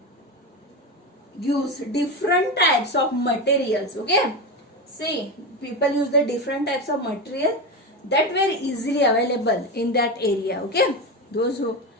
different types of materials. Okay, see, people use the different types of material that were easily available in that area. Okay, those who,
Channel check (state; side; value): normal; both; correlation 0.18